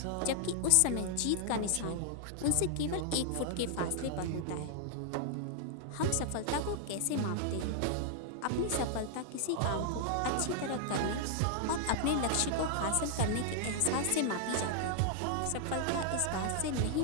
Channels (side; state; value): both; different; correlation -0.01